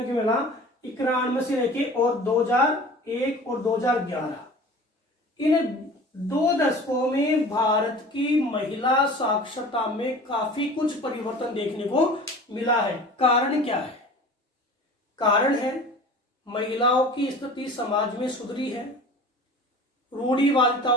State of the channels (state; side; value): normal; both; correlation 0.41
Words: को मिला 91 से लेके और 2001 और 2011, इन 2 दशकों में भारत की महिला साक्षरता में काफी कुछ परिवर्तन देखने को मिला है। कारण क्या है, कारण है महिलाओं की स्थिति समाज में सुधरी है,